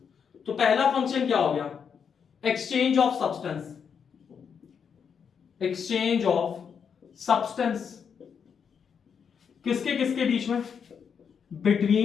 तो पहला फंक्शन क्या हो गया, exchange of substance. Exchange of substance किसके किसके बीच में,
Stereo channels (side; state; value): right; quieter; 6.9 dB